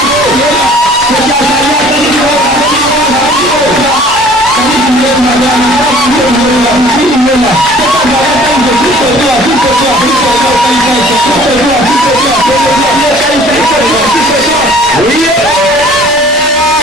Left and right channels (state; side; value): normal; both; correlation 0.51